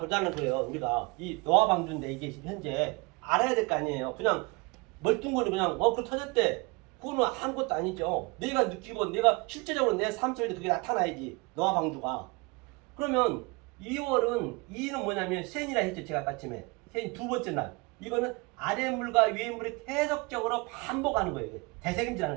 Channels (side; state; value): left; quieter; 27.2 dB